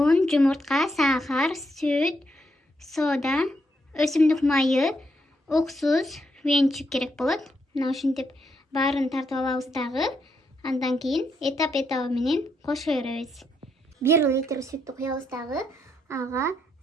жумуртка, сахар, сүт, сода, өсүмдүк майы, уксус, венчик керек болот. Мына ушинтип баарын тартып алабыз дагы. Андан кийин этап менен кошо беребиз. 1 литр сүттү куябыз дагы. Ага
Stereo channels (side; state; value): both; normal; correlation 0.78